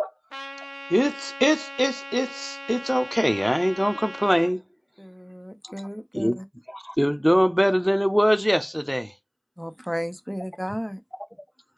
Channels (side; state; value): both; identical; correlation 1.00